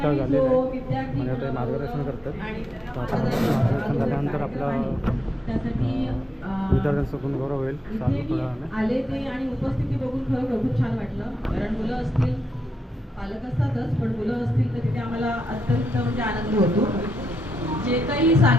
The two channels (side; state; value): both; normal; correlation 0.83